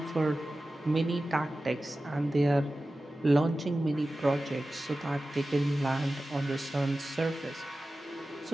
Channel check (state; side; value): normal; both; correlation 0.95